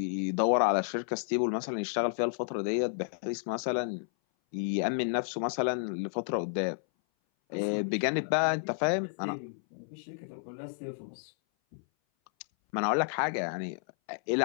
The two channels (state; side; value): silent; right; 57 dB below the other